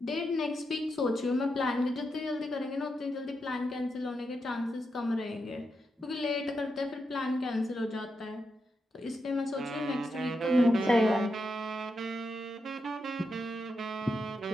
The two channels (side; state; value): both; normal; correlation 0.85